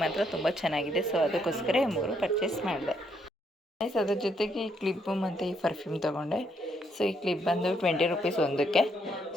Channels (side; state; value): both; normal; correlation 0.74